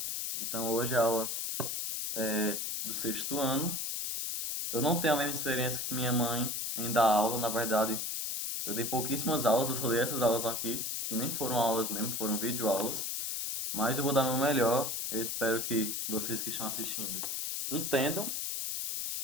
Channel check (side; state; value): left; noise; hiss, 2 dB below the sound